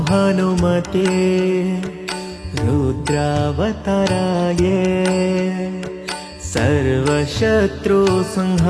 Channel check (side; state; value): both; identical; correlation 1.00